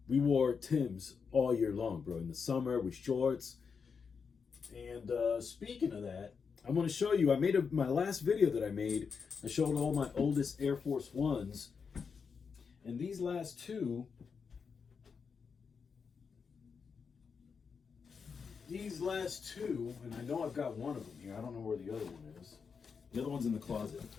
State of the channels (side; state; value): right; quieter; 5.8 dB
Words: we wore Timbs all year long, bro. In the summer with shorts. And speaking of that, I'm going to show you, my last video that I made, I showed all my oldest Air Force Ones. And these last two, and I know I've got one of them here. I don't know where the other one is. The other one's in the closet.